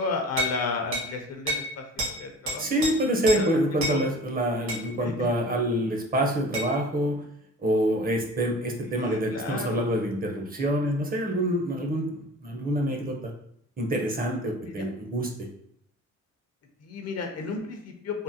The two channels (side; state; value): both; normal; correlation 0.42